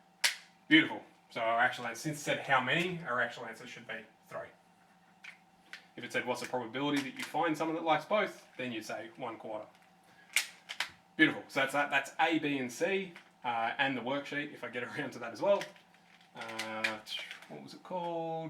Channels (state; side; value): identical; both; correlation 1.00